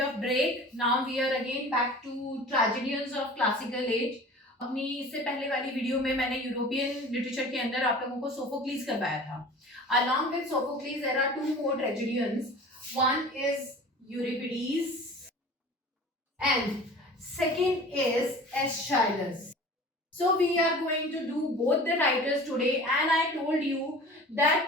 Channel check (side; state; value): both; normal; correlation 0.41